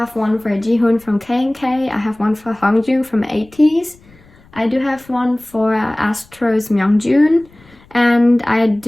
one for Jihoon from K&K. I have one for Hongjoong from ATEEZ. I do have one for Astro's Myungjoon. And I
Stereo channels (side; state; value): left; noise; rumble, 28 dB below the sound